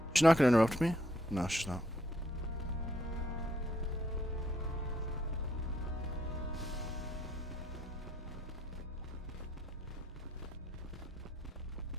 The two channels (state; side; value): normal; both; correlation 0.71